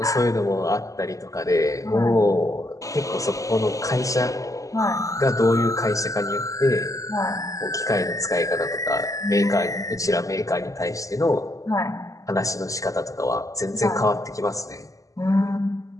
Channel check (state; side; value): late; right; 0.16 ms